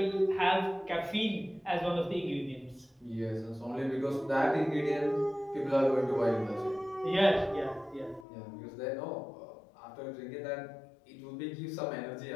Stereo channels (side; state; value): right; drops out; at 8.2 s